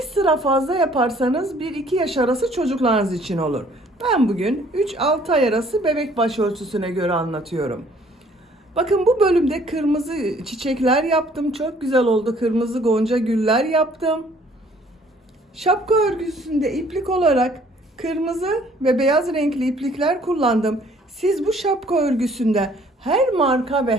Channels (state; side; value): normal; both; correlation 0.58